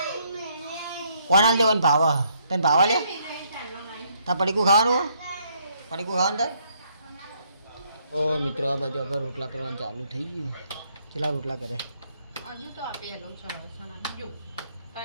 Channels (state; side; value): inverted; both; correlation -0.70